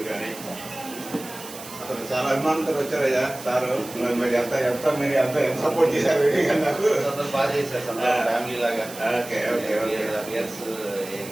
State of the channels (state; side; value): noise; right; hiss, 14 dB below the sound